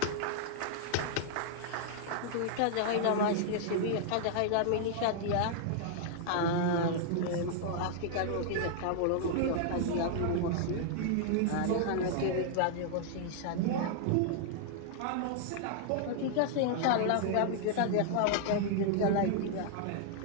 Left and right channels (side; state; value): both; different; correlation -0.01